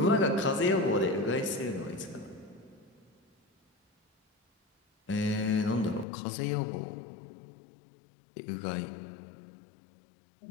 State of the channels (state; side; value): drops out; right; at 6.1 s